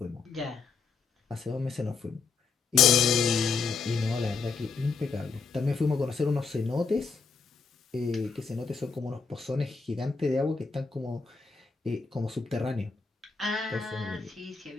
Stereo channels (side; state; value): right; quieter; 5.0 dB